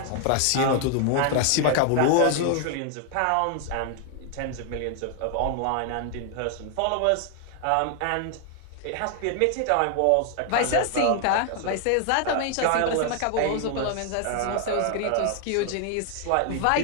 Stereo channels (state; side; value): different; both; correlation 0.00